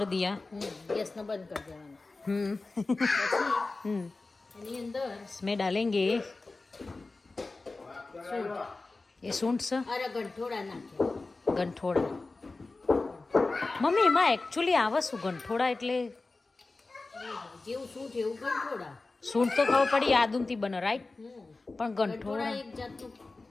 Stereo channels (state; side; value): quieter; right; 3.5 dB